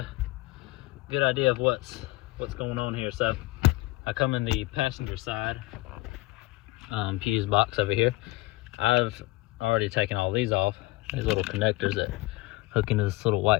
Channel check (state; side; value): quieter; right; 20.0 dB